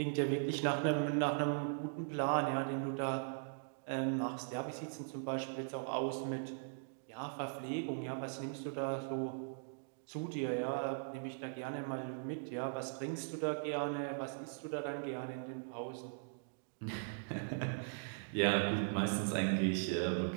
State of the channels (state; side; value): silent; left; digital silence